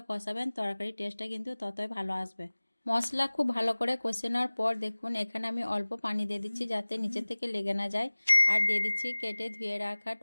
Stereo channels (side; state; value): both; inverted; correlation -1.00